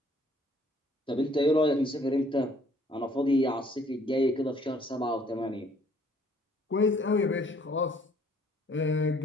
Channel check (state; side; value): normal; both; correlation 0.61